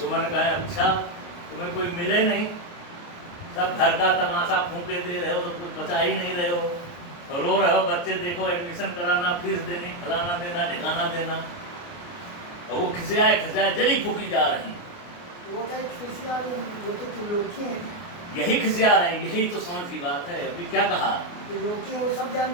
कहे अच्छा तुम्हें कोई मिले नहीं, सब घर का तमाशा फूके दे रहे हो तो कुछ बचा ही नहीं रहे हो, और रो रहे हो बच्चे देखो एडमिशन कराना, फीस देनी, फलाना देना, ठिकाना देना, और वो खिसियाए जली फूकी जा रही। वो क्या खिसिया रही, वो तो त्रिलोकी है। यही खिसिया रहे, यही तो समझ की बात है। अभी क्या कहा? त्रिलोकी है, वो सब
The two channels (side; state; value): right; late; 29 ms